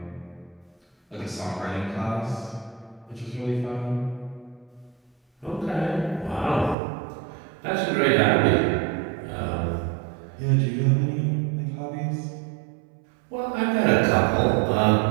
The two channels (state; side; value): drops out; left; at 6.8 s